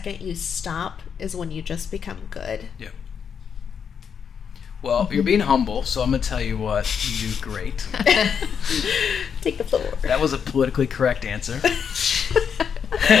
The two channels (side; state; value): right; quieter; 7.1 dB